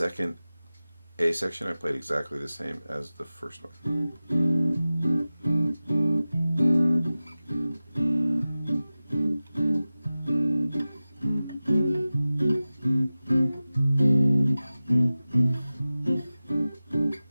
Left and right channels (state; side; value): inverted; both; correlation -0.96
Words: A section I played exactly the same as the first one.